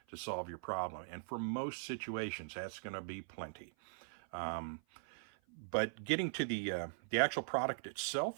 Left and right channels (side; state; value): left; silent; 51 dB below the other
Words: to solve your problem. And for most situations, that's going to be plenty. But getting to the actual product